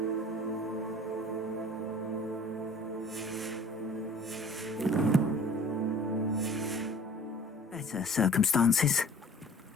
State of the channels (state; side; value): normal; both; correlation 0.48